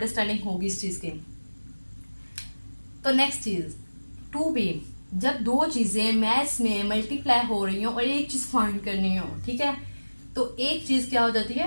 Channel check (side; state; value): both; inverted; correlation -1.00